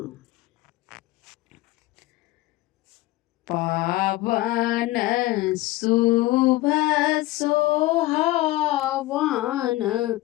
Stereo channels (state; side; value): quieter; right; 18.0 dB